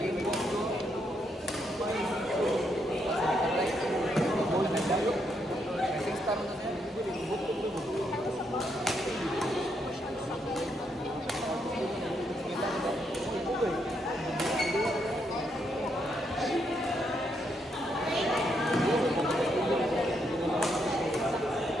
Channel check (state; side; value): normal; both; correlation 0.77